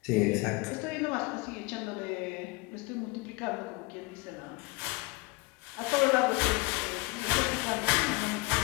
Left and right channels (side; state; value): right; quieter; 24.5 dB